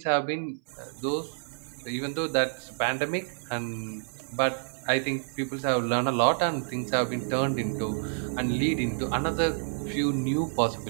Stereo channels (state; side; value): silent; left; 59 dB below the other